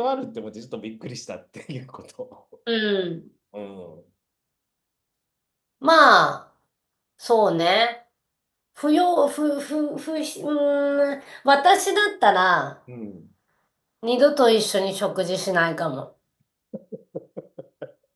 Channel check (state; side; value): identical; both; correlation 1.00